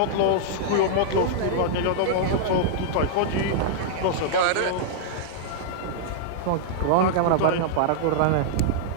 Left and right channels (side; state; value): both; different; correlation -0.01